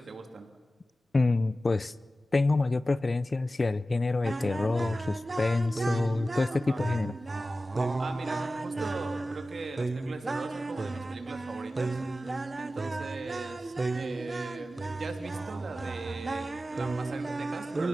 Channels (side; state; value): both; normal; correlation 0.94